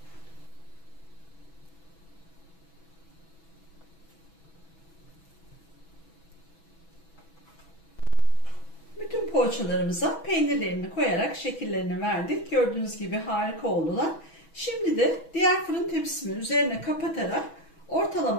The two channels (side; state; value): right; late; 6.1 ms